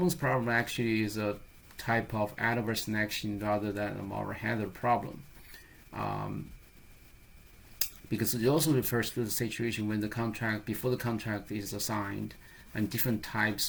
problem actually is a type of adverse selection rather than a moral hazard problem. Because it also refers to the situation when before the contract is signed, and different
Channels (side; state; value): both; identical; correlation 1.00